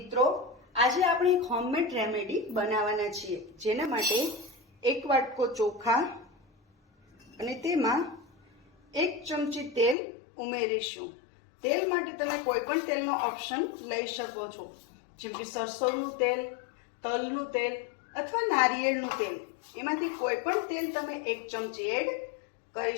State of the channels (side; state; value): right; drops out; at 10.0 s